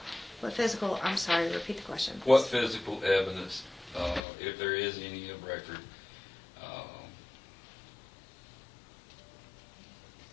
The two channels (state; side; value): drops out; right; at 4.2 s